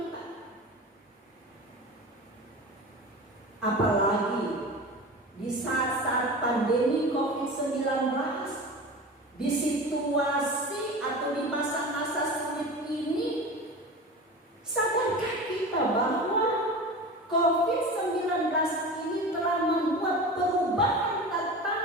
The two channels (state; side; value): normal; both; correlation 0.32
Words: Apalagi di saat-saat pandemi COVID-19, di situasi atau di masa-masa sulit ini, sadarkah kita bahwa COVID-19 ini telah membuat perubahan